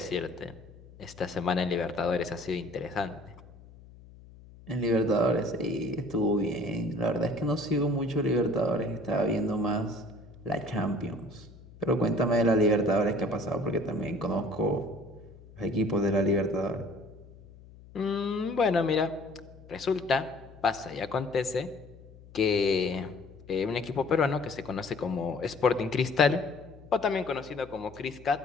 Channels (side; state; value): left; noise; hum, 21 dB below the sound